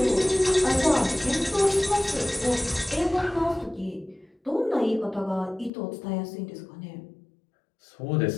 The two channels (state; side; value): drops out; right; at 5.7 s